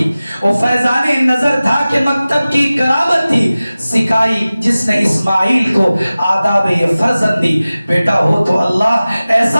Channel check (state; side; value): inverted; both; correlation -0.97